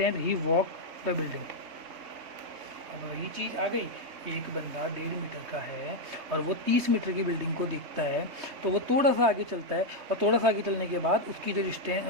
he walk the building. अब वही चीज़ आ गई, एक बंदा 1.5 मीटर का है और वो 30 मीटर की बिल्डिंग को देखता है, तो वो थोड़ा सा आगे चलता है और थोड़ा सा आगे चलने के बाद उसकी जो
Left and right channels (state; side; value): late; left; 3.2 ms